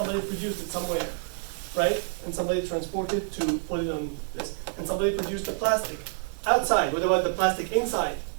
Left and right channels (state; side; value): silent; left; digital silence